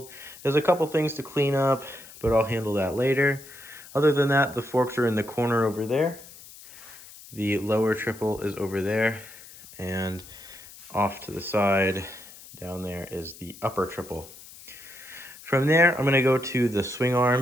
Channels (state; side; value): noise; left; hiss, 18 dB below the sound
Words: There's a couple things to clean up, but I'll handle that later. Other than that, the forks are in the corner over there. The lower triple is over there, and off to the side down there is the upper triple. From there, I'm gonna go to the swing